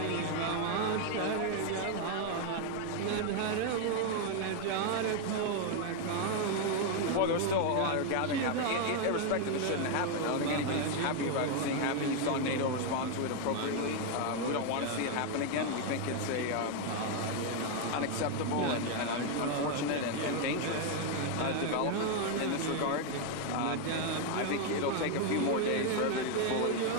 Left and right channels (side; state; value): both; different; correlation 0.01